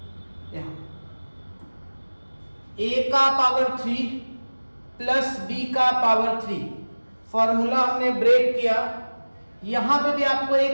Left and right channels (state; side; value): inverted; both; correlation -1.00